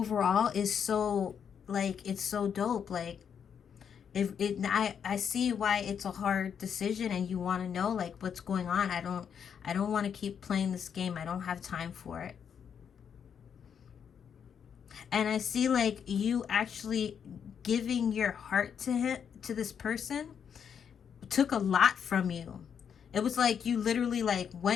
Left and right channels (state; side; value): quieter; right; 7.6 dB